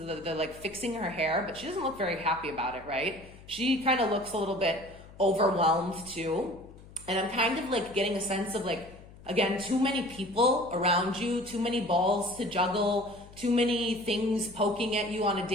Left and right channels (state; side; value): noise; left; hum, 20 dB below the sound